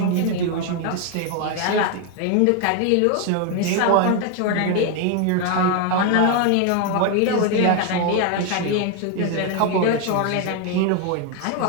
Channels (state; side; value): different; both; correlation 0.01